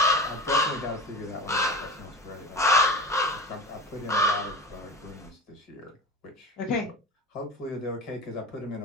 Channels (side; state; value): both; normal; correlation 0.32